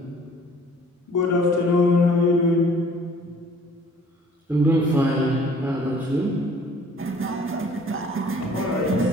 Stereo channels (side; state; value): both; normal; correlation 0.54